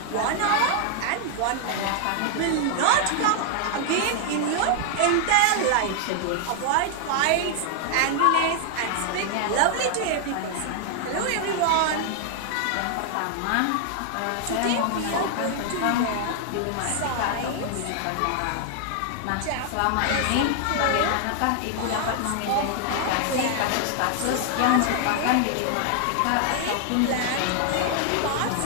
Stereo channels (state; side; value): different; both; correlation 0.00